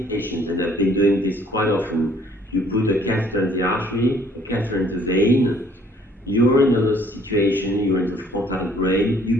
patient, and I've been doing this quite often, you put a catheter in the artery, a catheter in the vein, you're in another situation, you're in the frontal brain,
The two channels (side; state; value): both; normal; correlation 0.60